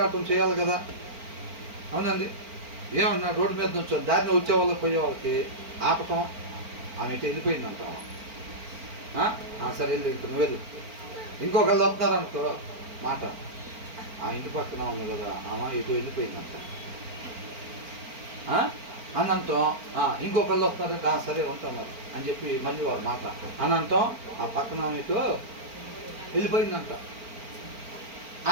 చేయాలి కదా. అవునండి? ఏమన్నా రోడ్డు మీద నుంచి దారిని వచ్చే వాళ్ళకి పోయే వాళ్ళకి ఆపటం. ఆమె ఇటు వెళ్ళిపోయిందంట. సరే వెళ్ళి ఇంక నువ్వు వెళ్ళు. ఇంకొకళ్ళు వస్తున్నారనుకో మాట, ఆ ఇంటి పక్కన ఉంది కదా ఆమె ఇటు వెళ్ళిపోయిందంట అనంతం. ఇంకొకళ్ళు వస్తున్నారంటే సరే ఉంటున్నారు అని చెప్పి మళ్ళీ వారు మాట అనంతం ఆ పక్కన ఇటు వెళ్ళిపోయిందంట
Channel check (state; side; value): late; left; 4.4 ms